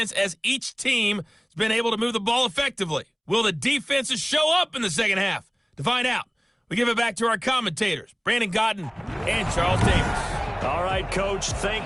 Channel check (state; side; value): identical; both; correlation 1.00